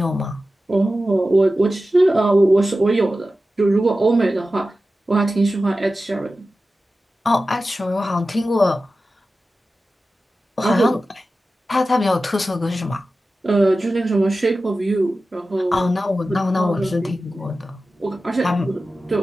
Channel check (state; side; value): normal; both; correlation 0.94